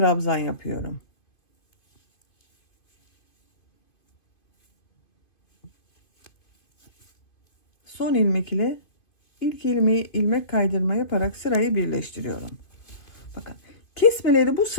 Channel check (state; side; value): late; right; 2.5 ms